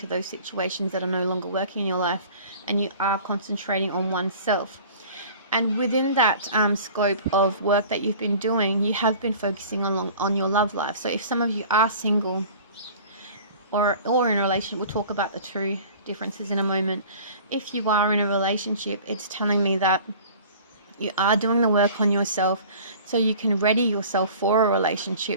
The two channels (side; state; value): both; inverted; correlation -0.44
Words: those situations that are no longer working in your life, and you are concentrating on oneself. And within that scope of work that you've been doing, you have been focusing on your love life. So if some of you are single or in a relationship, we'll talk about the two differences in a moment. If you are in a relationship, it's telling me that you are doing the work on yourself so you can ready yourself for a